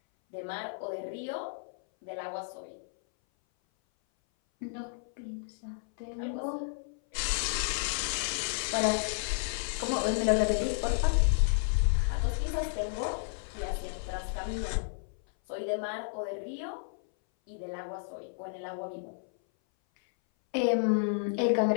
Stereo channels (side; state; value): right; silent; 56 dB below the other